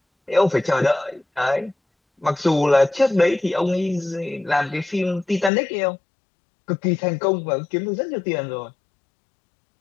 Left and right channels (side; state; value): right; drops out; at 5.5 s